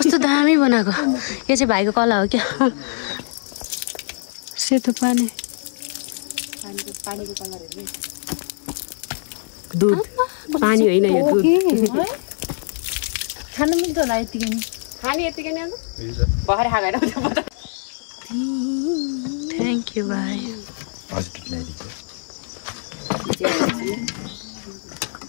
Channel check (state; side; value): silent; right; digital silence